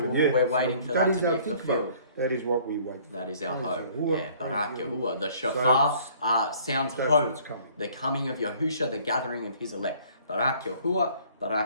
yeah. we're waiting So for that is to our be tikvah. fulfilled. That is what we wait for. That is our Praise hope. Yahuwah. Yeah, Praise Barak Yahuwah. Yahuwah. The shofar sounds that's hope. what's coming. The coming of Yahusha, the gathering of his elect. Barak Yahuwah,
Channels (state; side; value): inverted; both; correlation -0.56